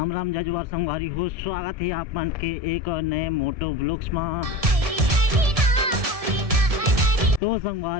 राम जजुआर संगवारी हो, स्वागत है आप मन के एक और नए मोटो ब्लॉग्स में। तो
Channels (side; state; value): left; late; 1.7 ms